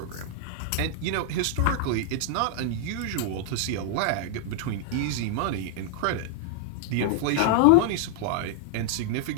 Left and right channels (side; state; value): both; different; correlation -0.01